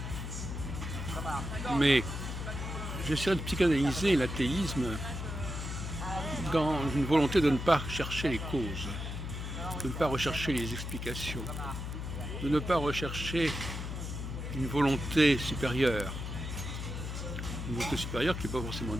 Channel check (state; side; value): noise; left; hum, 5 dB below the sound